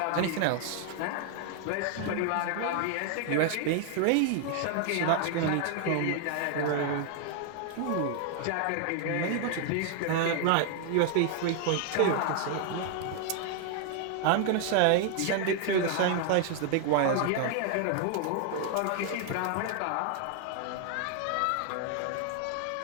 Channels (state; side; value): different; both; correlation 0.00